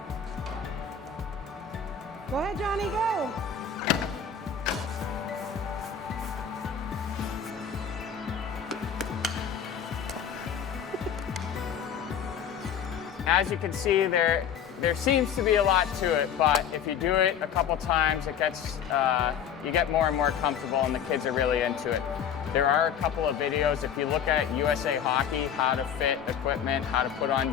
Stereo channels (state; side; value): quieter; right; 7.9 dB